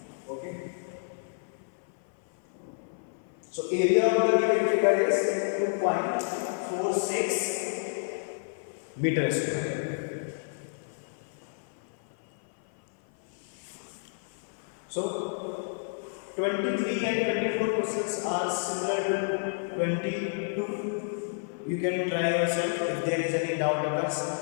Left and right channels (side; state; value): right; silent; 56 dB below the other